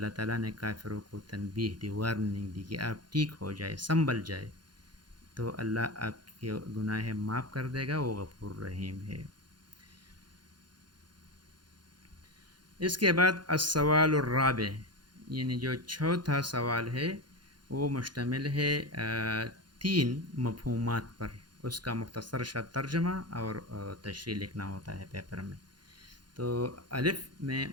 تعالیٰ نے کافروں کو تنبیہ دی، وارننگ دی کہ آپ ٹھیک ہو جائے، سنبھل جائے، تو اللہ آپ کے گناہ معاف کر دے گا، وہ غفور رحیم ہے. اس کے بعد السوال الرابع، یعنی جو چوتھا سوال ہے وہ مشتمل ہے 3 مفہومات پر. اس کا مختصر سا ترجمہ اور تشریح لکھنا ہوتا ہے پیپر میں. تو الف میں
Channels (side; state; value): left; late; 0.71 ms